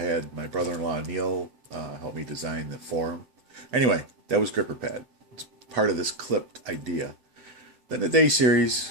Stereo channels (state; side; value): late; left; 7.9 ms